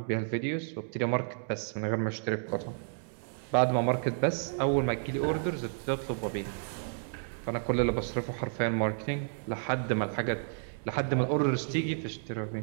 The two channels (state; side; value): silent; left; digital silence